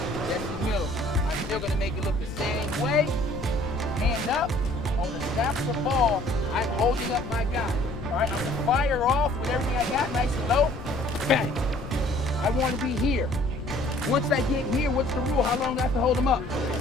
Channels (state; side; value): noise; left; rumble, 10 dB below the sound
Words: Jesse Miller, I'm still going to make it look the same way. Hand up. On the snap of the ball, I'm holding up my guy. All right, I'm going to fire off with everything I got, nice and low. Bang. I want to be here. Once I get here, what's the rule? How long do I have to hold him up?